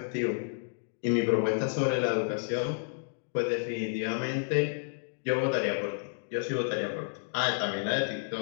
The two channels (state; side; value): silent; right; digital silence